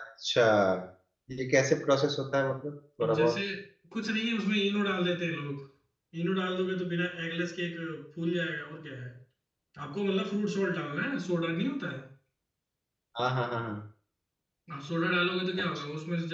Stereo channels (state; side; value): identical; both; correlation 1.00